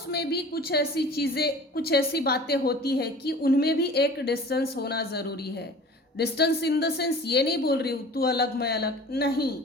में भी कुछ ऐसी चीज़ें, कुछ ऐसी बातें होती है कि उनमें भी एक डिस्टेंस होना ज़रूरी है। डिस्टेंस इन द सेंस ये नहीं बोल रही हूँ तू अलग मैं अलग, नहीं।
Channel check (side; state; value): both; normal; correlation 0.42